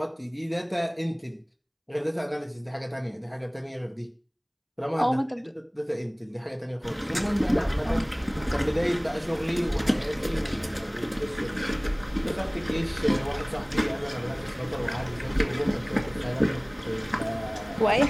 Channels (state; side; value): identical; both; correlation 1.00